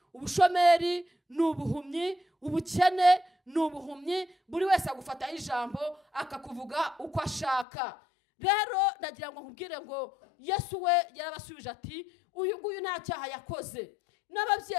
ubushomeri ni ubuhumyi, ubukene n'ubuhumyi, buri wese agufataho ijambo akakuvuga uko ashaka. Rero ndagira ngo nkubwire ngo Yesu we yarabasubije ati uyu nguyu nta cyaha yakoze,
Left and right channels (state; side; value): drops out; right; at 7.7 s